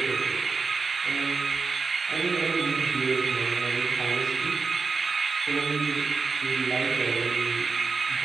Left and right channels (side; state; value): left; quieter; 4.6 dB